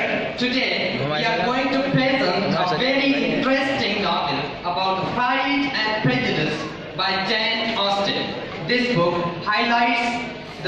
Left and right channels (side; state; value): both; identical; correlation 1.00